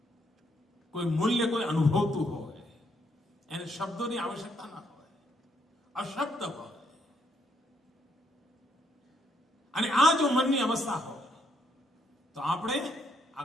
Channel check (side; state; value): both; normal; correlation 0.73